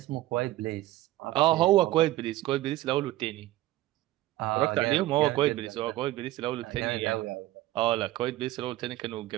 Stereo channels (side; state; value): left; quieter; 16.3 dB